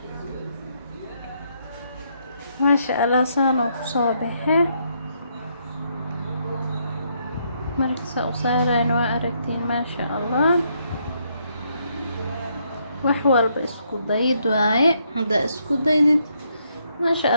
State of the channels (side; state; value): both; inverted; correlation -0.74